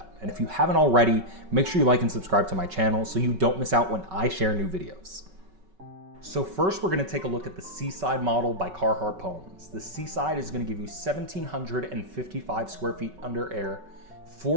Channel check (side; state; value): left; late; 5.3 ms